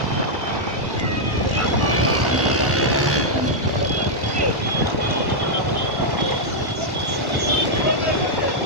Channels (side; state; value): left; late; 1.1 ms